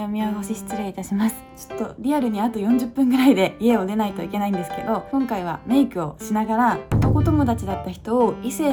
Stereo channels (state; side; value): identical; both; correlation 1.00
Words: お見汚し失礼いたします。ちょっとリアルにあと40分ぐらいで家を出ないといけないんですけど、今回はメイクをしながら男友達だった人を異性